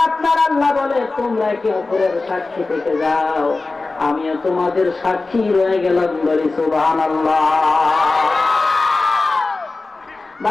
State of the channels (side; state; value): right; quieter; 3.6 dB